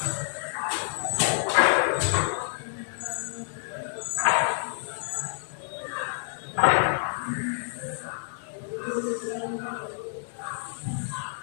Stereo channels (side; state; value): right; silent; 59 dB below the other